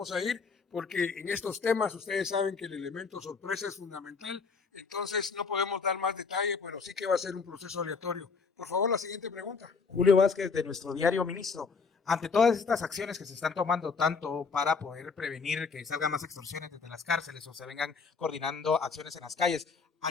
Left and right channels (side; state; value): right; quieter; 5.1 dB